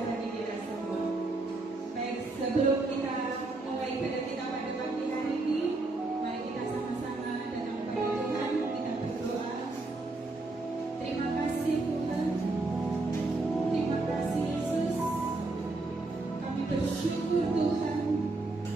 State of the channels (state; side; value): quieter; left; 3.2 dB